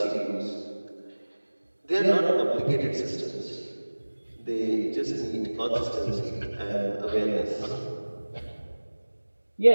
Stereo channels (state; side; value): inverted; both; correlation -1.00